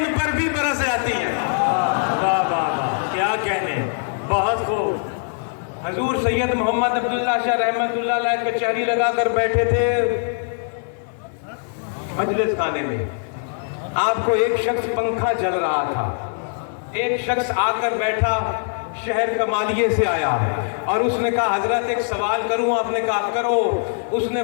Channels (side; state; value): right; silent; digital silence